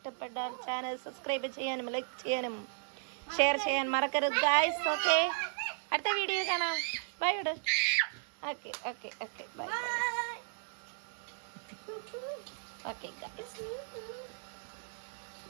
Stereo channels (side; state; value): left; silent; digital silence